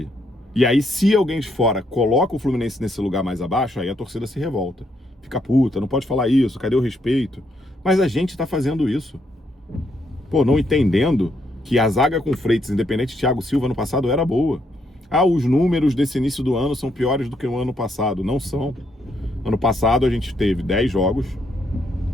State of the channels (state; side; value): normal; both; correlation 0.75